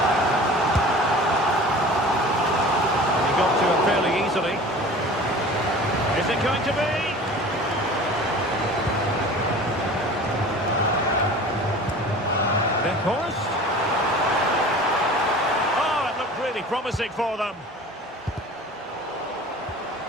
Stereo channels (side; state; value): both; normal; correlation 0.41